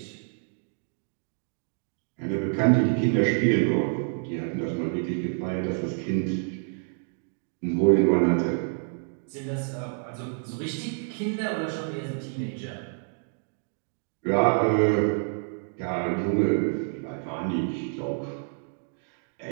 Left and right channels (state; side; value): silent; left; 59 dB below the other